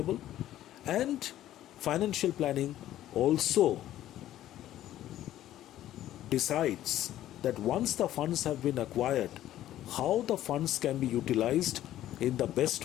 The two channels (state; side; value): quieter; right; 13.1 dB